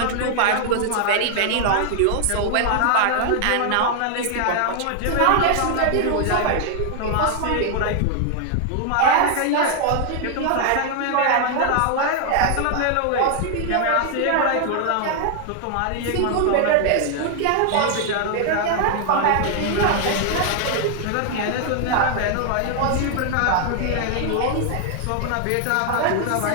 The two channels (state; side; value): different; both; correlation 0.00